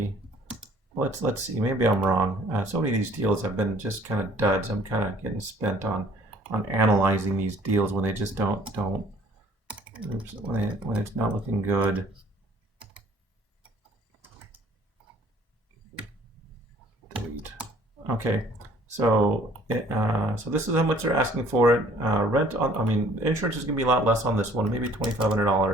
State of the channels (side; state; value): both; normal; correlation 0.56